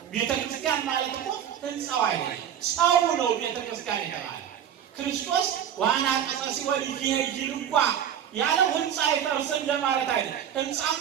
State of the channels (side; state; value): left; quieter; 9.4 dB